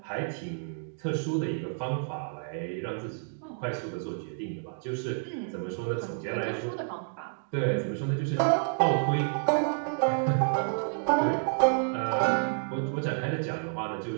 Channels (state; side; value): silent; left; digital silence